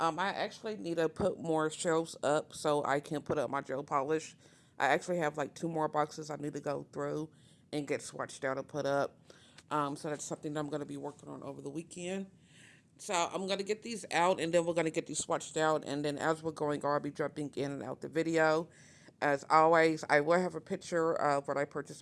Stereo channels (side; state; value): both; identical; correlation 1.00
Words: actually need to put more shelves up so I can put up my gel polish. I actually have like 2 more boxes I need to go through and get swatched out and put up. So that's something that I'm going to be working on over the weekend. So I'm going to get these out, and then we're going to get these swatched out, and then as we're going, I'll be jumping in and out the video. As always, I will have a picture of what I purchased